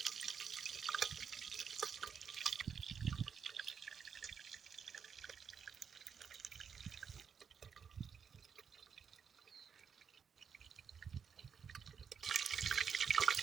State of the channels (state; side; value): quieter; left; 6.8 dB